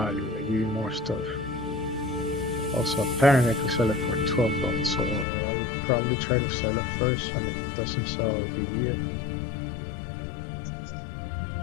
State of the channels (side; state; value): right; drops out; at 5.2 s